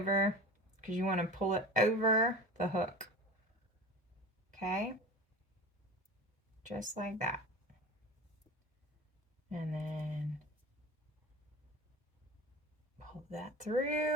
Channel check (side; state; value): both; normal; correlation 0.33